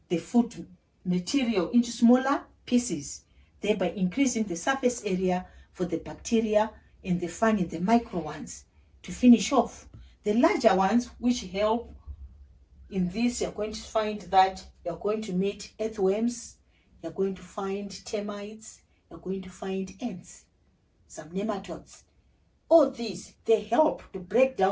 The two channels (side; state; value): both; identical; correlation 1.00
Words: the food material into smaller pieces, thereby increasing the surface area for the bacteria and the fungi, the micro ones, to finish off. The larger ones, which help in this, you're going to find that you're going to meet earthworms, you're going to find termites, you're going to find ants, some nematodes. All these, they help to break